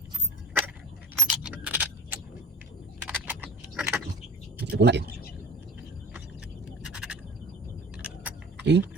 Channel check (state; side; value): normal; both; correlation 0.36